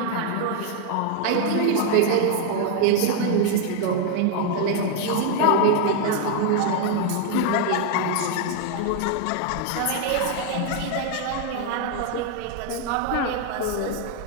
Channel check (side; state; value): both; different; correlation 0.01